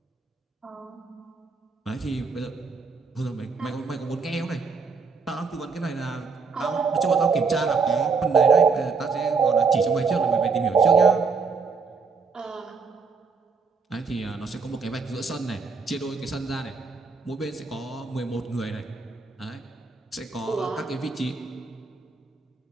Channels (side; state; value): left; quieter; 4.9 dB